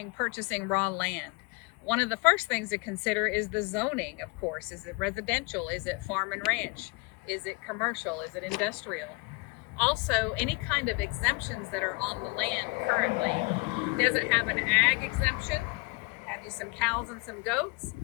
purchasing raw land. One of the first things to consider is the zoning, of course. Is it residential? Is it farm and ranch? Is it commercial? Is it industrial? Also, any kind of exemptions that are on the land currently. Does it have an ag exemption? Have you some cows and some goats?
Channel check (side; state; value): right; quieter; 28.2 dB